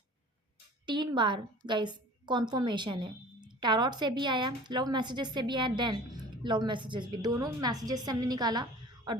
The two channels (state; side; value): normal; both; correlation 0.44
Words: 3 बार गाइस कॉन्फर्मेशन है। टैरोट से भी आया, लव मैसेजेस से भी आया, देन लव मैसेजेस भी। दोनों मैसेजेस से हमने निकाला और